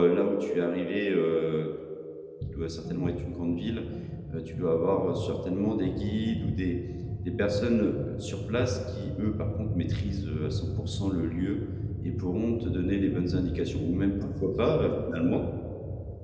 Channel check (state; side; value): identical; both; correlation 1.00